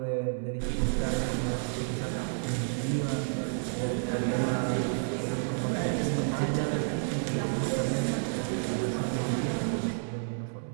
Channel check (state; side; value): silent; left; 58 dB below the other